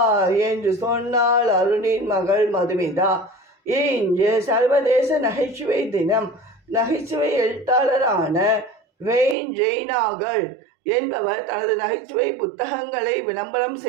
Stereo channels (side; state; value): left; drops out; at 9.3 s